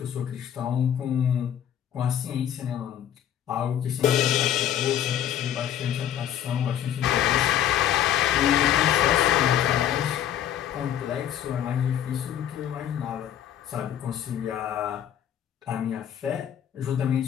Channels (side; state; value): right; quieter; 10.4 dB